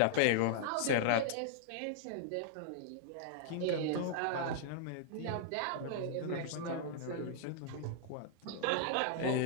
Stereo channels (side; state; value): both; different; correlation -0.01